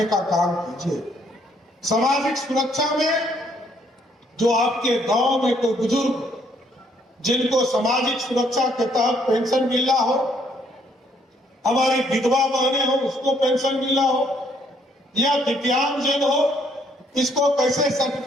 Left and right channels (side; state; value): both; normal; correlation 0.67